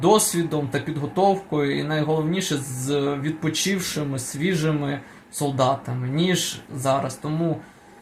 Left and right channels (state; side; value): identical; both; correlation 1.00